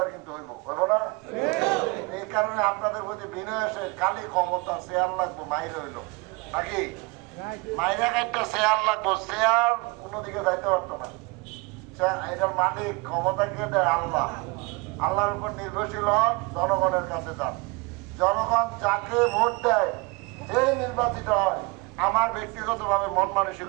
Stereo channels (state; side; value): quieter; left; 26.6 dB